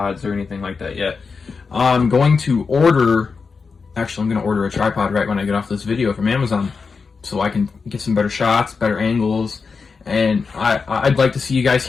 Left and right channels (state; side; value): quieter; right; 4.9 dB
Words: or anything like that yet. I'm going to order... Actually, I'm going to order a tripod right when I get off this video from Amazon, so I can get some better shots, better angles, and I'd like to see you guys